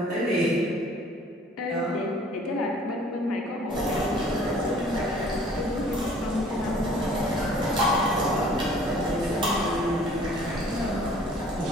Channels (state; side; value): normal; both; correlation 0.53